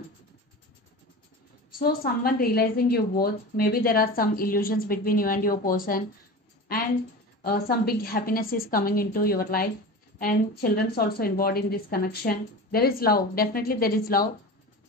So someone realizing you both, maybe there are some illusions between you and your person, and some big happiness is coming into your life, and children's also involved in this connection. There is love, definitely there is love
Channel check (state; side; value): normal; both; correlation 0.31